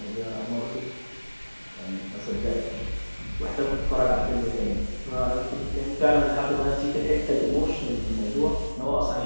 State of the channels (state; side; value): inverted; both; correlation -1.00